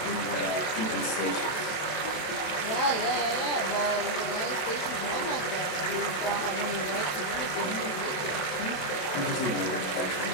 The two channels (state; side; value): late; right; 27 ms